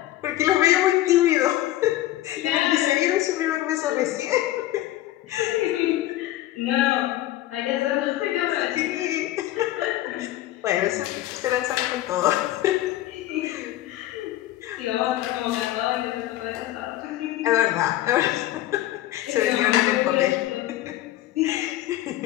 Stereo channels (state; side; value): quieter; right; 14.9 dB